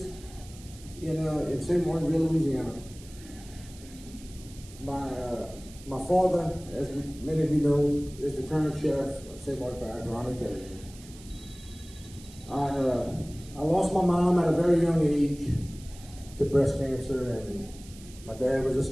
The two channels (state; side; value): noise; right; hiss, 20 dB below the sound